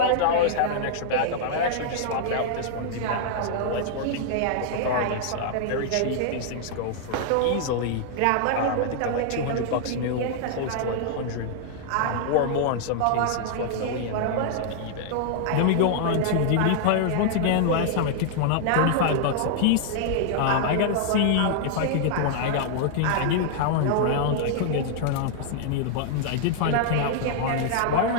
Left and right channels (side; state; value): both; different; correlation -0.01